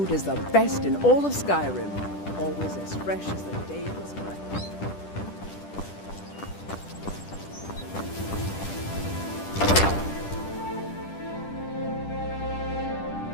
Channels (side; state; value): right; late; 10 ms